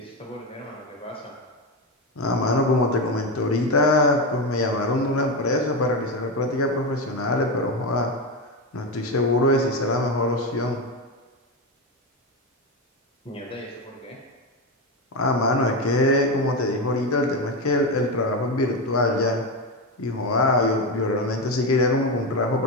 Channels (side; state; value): both; normal; correlation 0.14